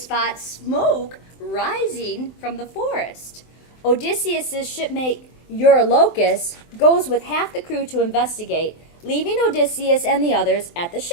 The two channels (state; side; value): late; right; 23 ms